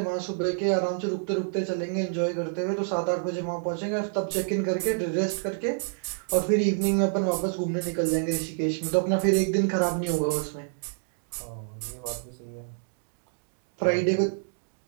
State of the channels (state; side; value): silent; left; digital silence